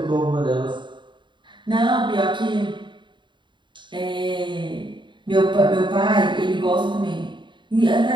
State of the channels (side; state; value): left; late; 0.23 ms